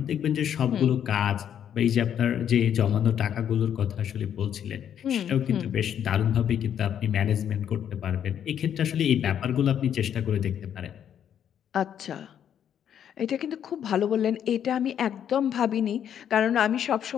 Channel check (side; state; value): right; quieter; 9.3 dB